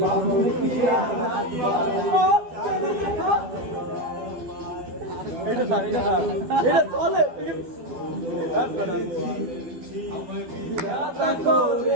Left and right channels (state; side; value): late; left; 12 ms